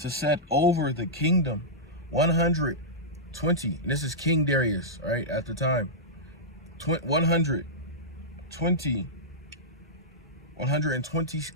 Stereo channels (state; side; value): normal; both; correlation -0.12